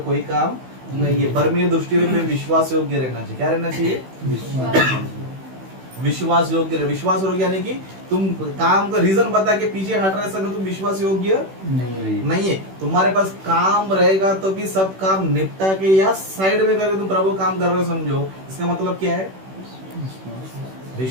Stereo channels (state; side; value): late; left; 16 ms